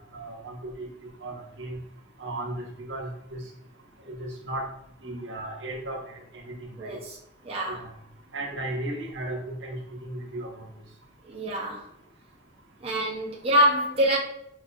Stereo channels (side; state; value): both; normal; correlation -0.16